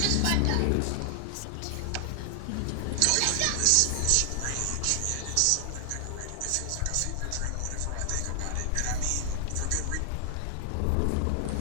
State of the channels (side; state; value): both; different; correlation 0.00